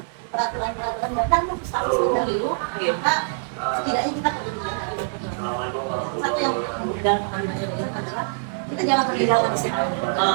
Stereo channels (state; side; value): silent; left; 63 dB below the other